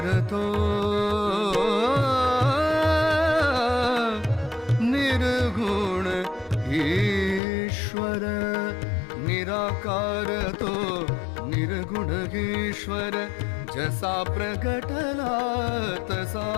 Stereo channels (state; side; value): drops out; right; at 7.4 s